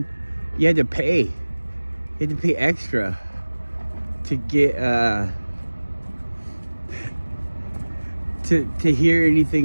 you had to pay extra to get to hear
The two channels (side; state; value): both; inverted; correlation -1.00